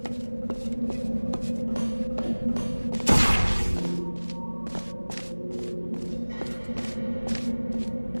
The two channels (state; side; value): inverted; both; correlation -1.00